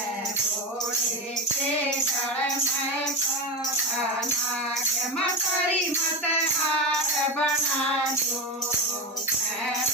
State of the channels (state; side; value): normal; both; correlation 0.17